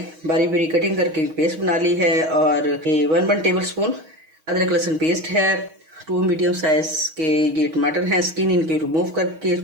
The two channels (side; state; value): left; late; 6.3 ms